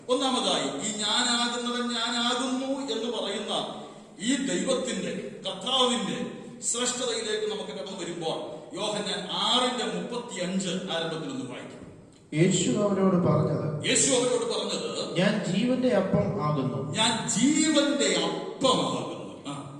ഒന്നാമതായി, ഈ ഞാനാകുന്നവൻ ഞാനാകുന്നു എന്ന് പറയുന്ന ഈ ദൈവത്തിന്റെ, കർത്താവിന്റെ ശ്രേഷ്ഠതയിലേക്ക് നമുക്ക് കടന്നു വരുമ്പോൾ യോഹന്നാൻ 6:35 ആരംഭത്തിൽ ഒന്ന് വായിക്കും. യേശു അവരോട് പറഞ്ഞത്, ഞാൻ ജീവന്റെ അപ്പം ആകുന്നു. ഞാൻ ജീവന്റെ അപ്പമാകുന്നു.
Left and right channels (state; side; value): identical; both; correlation 1.00